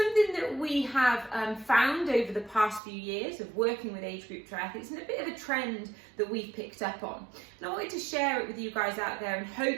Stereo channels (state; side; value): drops out; left; at 2.8 s